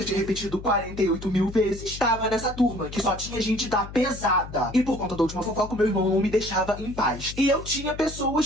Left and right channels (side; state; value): left; noise; hum, 12 dB below the sound